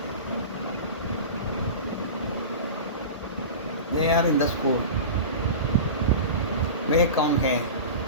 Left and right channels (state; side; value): inverted; both; correlation -0.30